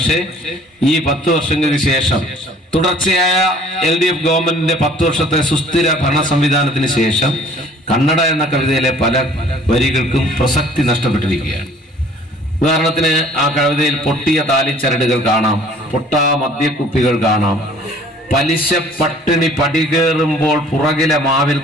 ഈ 10 വർഷങ്ങൾക്ക് ശേഷം തുടർച്ചയായ LDF ഗവൺമെന്റിന്റെ 10 വർഷത്തെ സുസ്ഥിര ഭരണ സംവിധാനത്തിന് ശേഷം കന്നഡ എന്ന കവിതയിലെ പല വരികൾക്കും പ്രസക്തി നഷ്ടപ്പെട്ടിരിക്കുകയാണ്. ഉദാഹരണത്തിന് ആ കവിതയിൽ പൊട്ടിയ താലിച്ചരടുകൾ കാണാം, പൊട്ടാ മദ്യക്കുപ്പികൾ കാണാം, പലിശ പട്ടിണി പടികേറുമ്പോൾ പുറകിലെ മാവിൽ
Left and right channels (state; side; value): normal; both; correlation 0.53